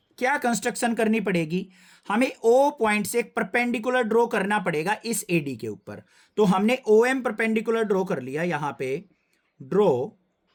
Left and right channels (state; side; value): identical; both; correlation 1.00